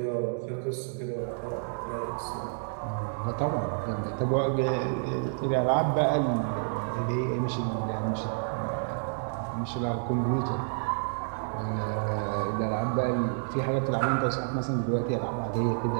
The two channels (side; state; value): left; silent; digital silence